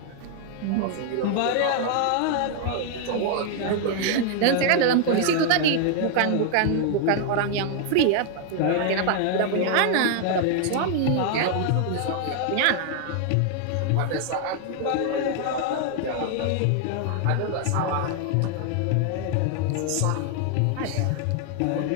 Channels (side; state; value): both; different; correlation 0.00